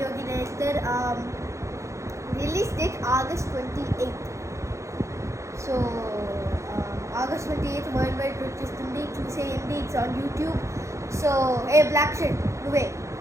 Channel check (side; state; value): left; late; 0.14 ms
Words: director. Release date August 28. So August 28 world wide వచ్చేస్తుంది, చూసేయండి. It's on YouTube. So black shirt నువ్వే